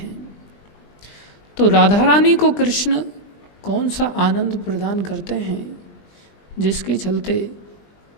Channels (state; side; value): late; right; 20 ms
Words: तो राधा रानी को कृष्ण कौन सा आनंद प्रदान करते हैं, जिसके चलते